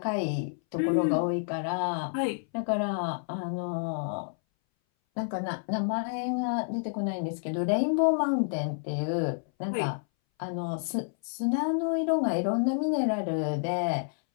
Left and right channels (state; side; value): silent; right; 58 dB below the other